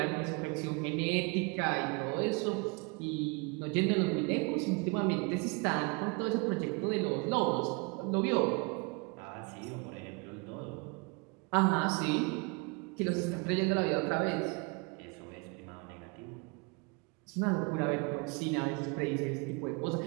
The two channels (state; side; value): quieter; left; 30.2 dB